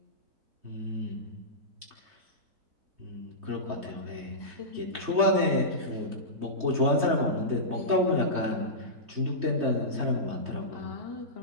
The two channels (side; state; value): left; late; 3.2 ms